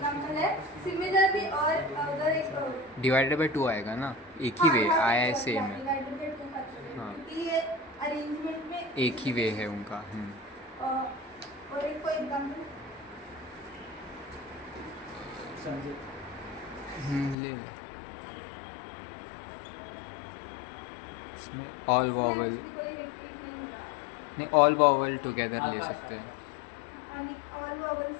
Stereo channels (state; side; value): drops out; right; at 17.4 s